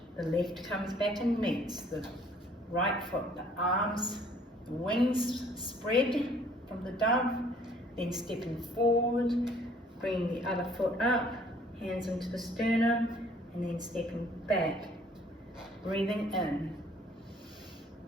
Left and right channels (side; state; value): both; normal; correlation 0.58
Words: The left comes back and meets the right foot, the arms, the wings spread from the dove, then stepping forward, bringing the other foot up, hands into the sternum, and then stepping back, breathing in,